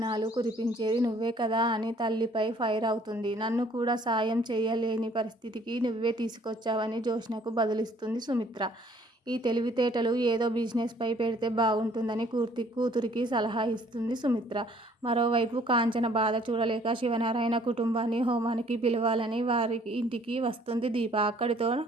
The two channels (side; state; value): both; normal; correlation 0.59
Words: కురిపించేది నువ్వే కదా అని తల్లిపై ఫైర్ అవుతుంది. నన్ను కూడా సాయం చేయలేని పరిస్థితికి నువ్వే తీసుకొచ్చావని జ్యోత్స్నకు బదులిస్తుంది సుమిత్ర. ఈ తెలివితేటలు ఏదో బిజినెస్ పై పెడితే బాగుంటుందని కూతురికి సలహా ఇస్తుంది సుమిత్ర. మరోవైపు కాంచన బాధ చూడలేక శివనారాయణ కుటుంబాన్ని హోమానికి పిలవాలని వారి ఇంటికి వస్తుంది దీప.